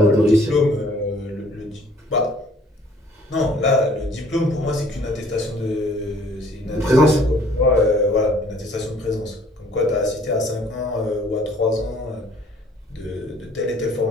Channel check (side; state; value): both; normal; correlation 0.57